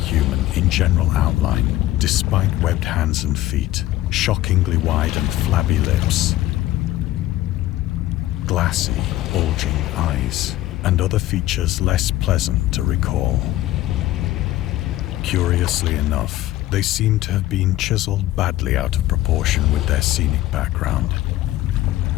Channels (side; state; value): right; quieter; 15.4 dB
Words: in general outline, despite webbed hands and feet, shockingly wide and flabby lips, glassy, bulging eyes, and other features less pleasant to recall. Curiously enough, they seemed to have been chiseled badly out of proportion with their scenic background.